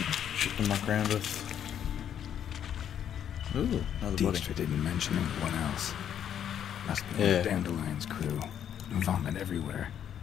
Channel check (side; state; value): right; quieter; 9.4 dB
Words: shit to muck around with. Ooh, another body. Dijkstra didn't mention anyone else. Must be Yeah. one of Dandelion's crew. Vomit everywhere.